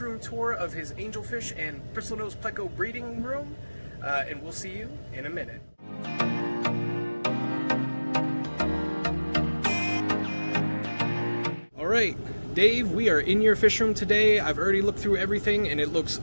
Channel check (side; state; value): both; inverted; correlation -1.00